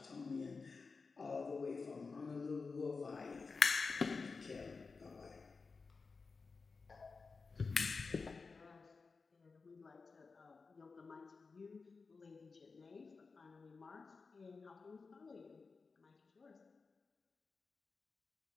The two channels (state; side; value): quieter; right; 4.5 dB